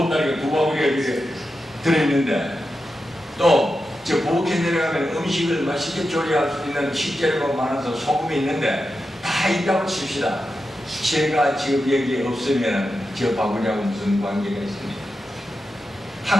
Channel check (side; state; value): both; normal; correlation 0.90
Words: 두 바구니가 이렇게 들어있는데 또 저 부엌에 내려가면 음식을 맛있게 조리할 수 있는 식재료가 많아서 소금이 있는데 다 있다고 칩시다. 제가 지금 여기에 없으면 저 바구니하고 무슨 관계가 있습니까?